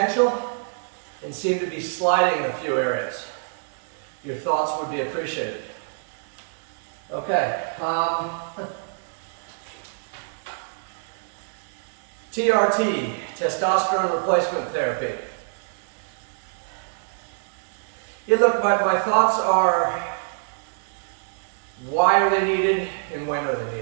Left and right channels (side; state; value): left; silent; 61 dB below the other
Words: and seem to be sliding in a few areas. Your thoughts would be appreciated. Okay. TRT, testosterone replacement therapy. Yeah, look, my thoughts are, why are they needed and when are